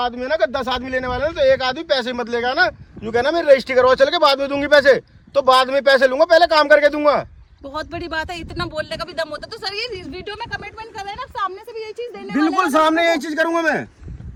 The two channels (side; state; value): both; identical; correlation 1.00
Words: है ना, 10 आदमी लेने वाले हैं, तो एक आदमी पैसे मत लेगा ना। यूँ कहना मैं रजिस्ट्री करवा चल के बाद में दूंगी पैसे, तो बाद में पैसे लूंगा, पहले काम करके दूंगा। बहुत बड़ी बात है, इतना बोलने का भी दम होता है। तो सर ये वीडियो में कमिटमेंट कर रहे हैं ना, सामने से भी ये चीज देने वाले हैं। बिल्कुल सामने यही चीज करूंगा मैं,